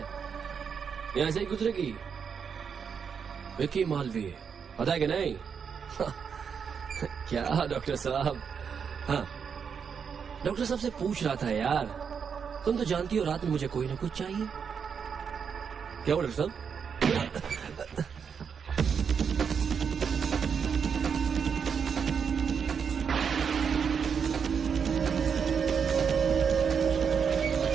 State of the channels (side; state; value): left; quieter; 6.7 dB